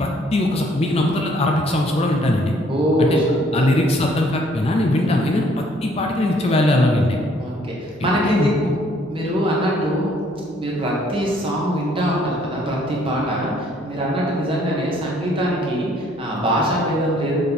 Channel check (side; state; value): right; noise; hum, 30 dB below the sound